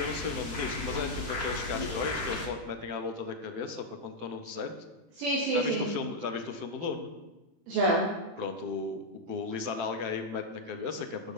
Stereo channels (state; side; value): late; left; 18 ms